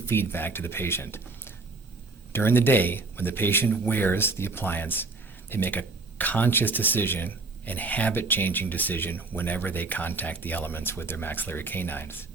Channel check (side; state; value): left; quieter; 3.5 dB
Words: feedback to the patient. During the day, when the patient wears the appliance, they make a conscious decision and habit-changing decision whenever they contact the elements with their maxillary canines.